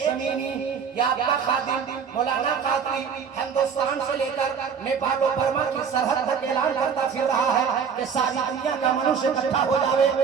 या आपका खादिम मौलाना कादरी हिंदुस्तान से लेकर नेपाल और बर्मा की सरहद तक ऐलान करता फिर रहा है कि सारी दुनिया का मनुष्य इकट्ठा हो जावे,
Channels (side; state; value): left; quieter; 6.7 dB